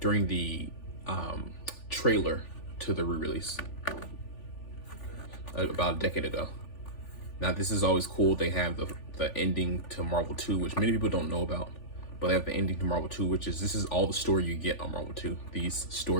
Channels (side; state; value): right; late; 3.4 ms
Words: the trailer to the re-release about a decade ago. Now this is always cool. They have the ending to Marvel 2, which many people don't know about, but they have the ending to Marvel 2, which is, this is all the story you get on Marvel 2, these